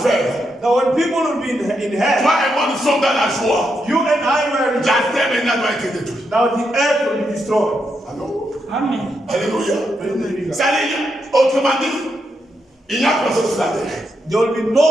Now when people will be in hell, Toi et moi, nous sommes dans la joie. you and I were in La terre maintenant doit être détruite. now the earth will be destroyed. Allô? Amen. Alléluia. Praise the living God. Ça dit, autrement dit, il n'y a personne sur la terre. There will be no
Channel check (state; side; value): normal; both; correlation 0.82